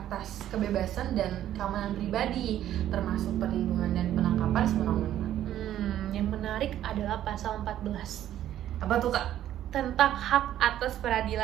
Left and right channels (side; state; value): left; quieter; 11.9 dB